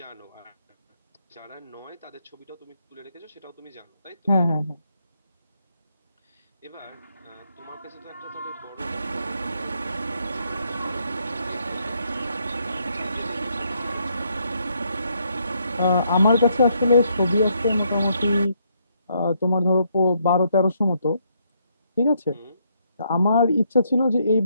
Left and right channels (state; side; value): inverted; both; correlation -0.74